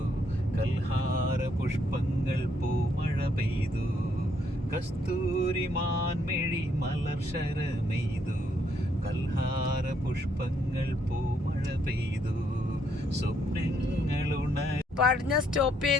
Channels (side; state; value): both; normal; correlation 0.72